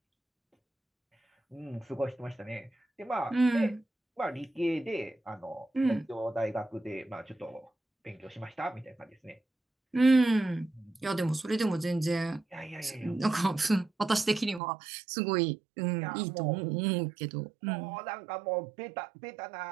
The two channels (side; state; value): left; drops out; at 14.6 s